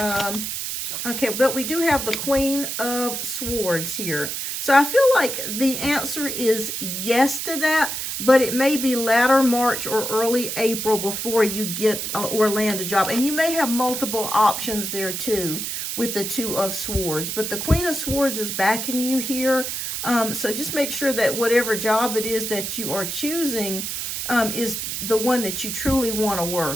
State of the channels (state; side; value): noise; right; hiss, 4 dB below the sound